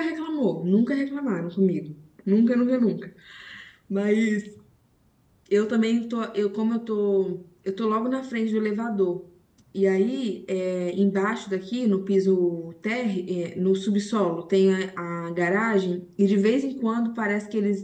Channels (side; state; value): both; identical; correlation 1.00